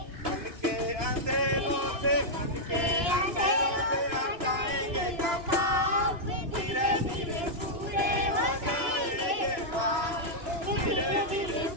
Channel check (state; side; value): late; left; 2.9 ms